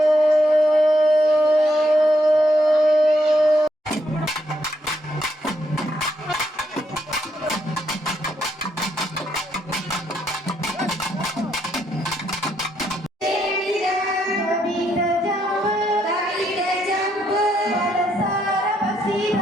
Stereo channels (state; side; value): normal; both; correlation 0.76